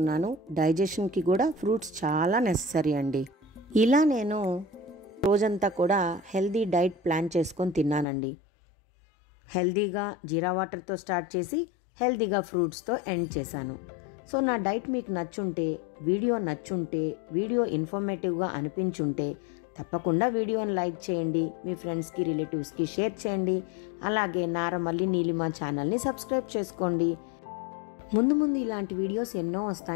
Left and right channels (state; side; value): drops out; right; at 8.1 s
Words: డైజెషన్కి కూడా ఫ్రూట్స్ చాలా నెససరీ అండి. ఇలా నేను రోజంతా కూడా హెల్దీ డైట్ ప్లాన్ చేసుకొని తిన్నానండి. హెల్దీగా జీరా వాటర్తో స్టార్ట్ చేసి హెల్దీగా ఫ్రూట్స్తో ఎండ్ చేశాను. సో నా డైట్ మీకు నచ్చుంటే, వీడియో ఇన్ఫర్మేటివ్గా అనిపించుంటే తప్పకుండా వీడియోని లైక్ చేయండి, మీ ఫ్రెండ్స్కి, రిలేటివ్స్కి షేర్ చేయండి. అలాగే నారమల్లి నీలిమ ఛానల్ని సబ్స్క్రైబ్ చేసుకోండి. ముందు ఇలాంటి వీడియోస్ ఎన్నో